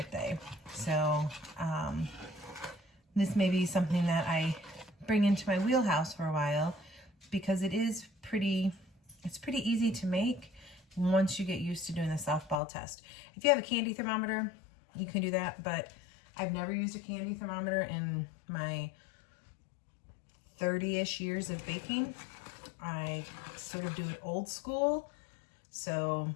So this may be something that I bring into my wheelhouse for a while, because it's pretty easy to make once you get used to doing the soft ball test. If you have a candy thermometer, you can do that, but I've never used a candy thermometer in my 30-ish years of baking. I sort of do it old school. So,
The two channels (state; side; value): drops out; right; at 12.6 s